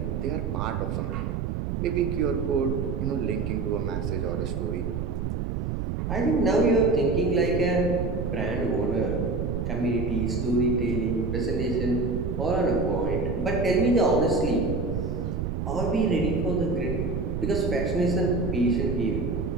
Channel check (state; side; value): noise; right; rumble, 2 dB below the sound